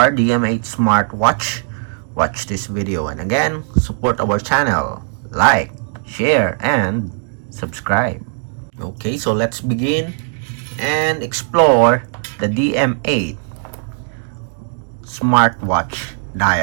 DM8 smartwatch, watch this video. And again, support our channel, like, share, and subscribe. Okay, so let's begin and explore the DM8 smartwatch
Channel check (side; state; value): left; silent; 67 dB below the other